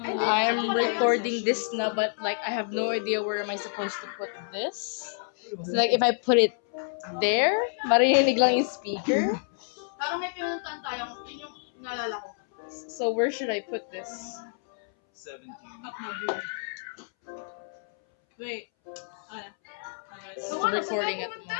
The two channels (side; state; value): right; silent; 59 dB below the other